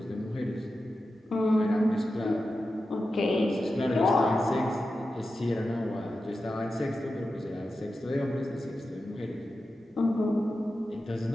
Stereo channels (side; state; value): both; normal; correlation 0.91